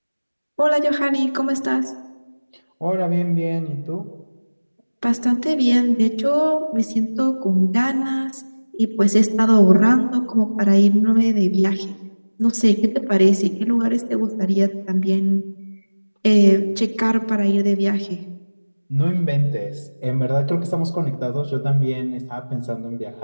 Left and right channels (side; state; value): both; inverted; correlation -1.00